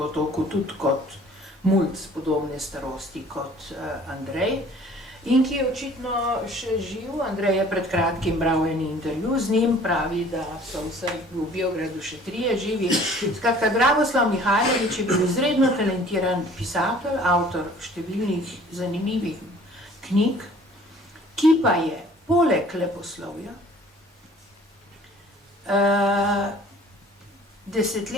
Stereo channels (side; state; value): both; normal; correlation 0.52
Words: tudi kot mulc podobne starosti kot Andrej, in ki je očitno še živ. Andrej je pred kratkim bral en intervju z njim, pravi, da so vsaj v Biogradu še 3 živi. Skratka, Dragoslav Mihajlović je bil izredno talentiran pisatelj, avtor številnih zanimivih knjig, ki pa je poleg leposlovja